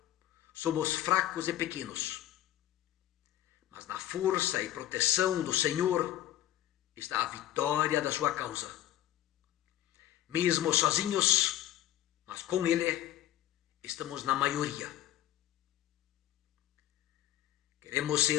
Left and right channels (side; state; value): right; quieter; 13.1 dB